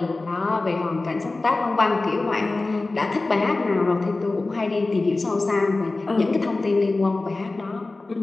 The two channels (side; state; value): right; quieter; 3.3 dB